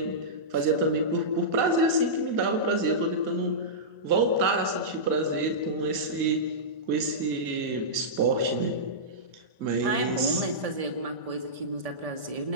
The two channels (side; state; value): left; late; 1.8 ms